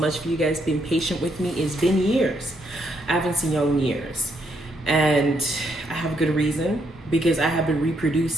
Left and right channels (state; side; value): normal; both; correlation 0.76